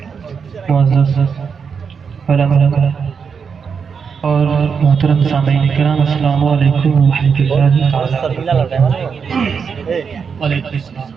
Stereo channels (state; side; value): quieter; left; 6.2 dB